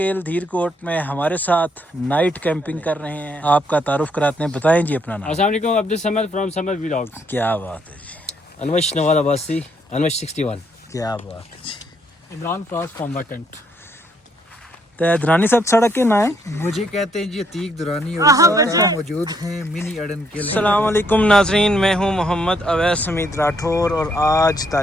धीरकोट में हमारे साथ नाइट कैंपिंग कर रहे हैं। आपका तारुफ कराते हैं, बताएं जी अपना नाम। अस्सलाम वालेकुम, अब्दुल समद फ्रॉम समद व्लॉग्स। क्या बात है जी, अनवश नवाज अब्बासी, अनवश 61। क्या बात है जी। Imran Faraz from vacant. तो दुरानी साहब सड़क के ना है, मुझे कहते हैं जी अतीक दुरानी और साथ मौजूद हैं मिनी अड़ंकेल। अस्सलाम वालेकुम नाजरीन, मैं हूं मोहम्मद अवैस हमीद राठौर और आज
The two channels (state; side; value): normal; both; correlation 0.72